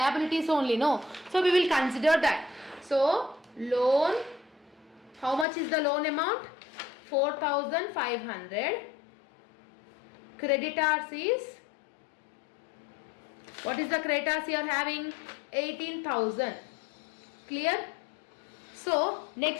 only, no. So we will consider that. So loan, how much is the loan amount? 4,500. Creditors is, what is the creditors you are having? 18,000. Clear? So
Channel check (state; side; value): drops out; right; at 5.5 s